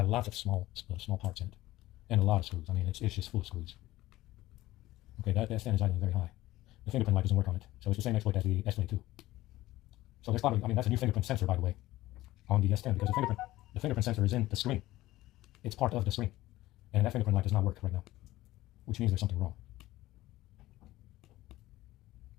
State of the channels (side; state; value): right; quieter; 16.8 dB